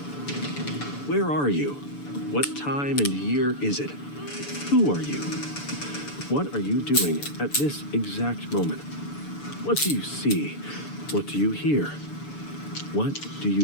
Where are you? What time and year is it? Who are you? What are you doing at this exact moment? What do you see? What do you hear? What do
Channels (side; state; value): right; late; 6.9 ms